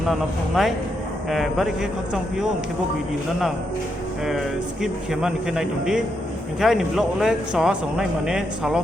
নানা ফংনাই বারি কে খকচং পিও কে বো video না skip খেমান কে নাই দंदि কে আইনি ব্লগ ले स संनाय माने सालो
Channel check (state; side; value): normal; both; correlation 0.81